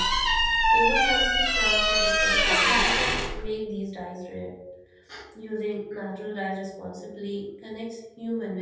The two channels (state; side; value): identical; both; correlation 1.00